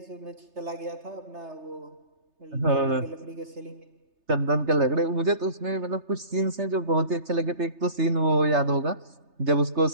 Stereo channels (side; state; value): left; late; 3.3 ms